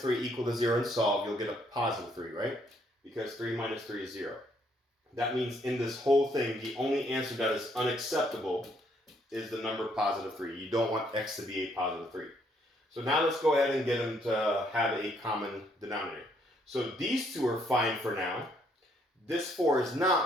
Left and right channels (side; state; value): both; normal; correlation 0.69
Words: 3 equal to 0 and solve, you'll get a +3, right? Because 3 minus 3 is 0. That means in this whole thing, the only answer that is unacceptable is the number +3. You don't want x to be a +3. So now let's go ahead and get them to have a common denominator. So these two are fine for now. This 4 is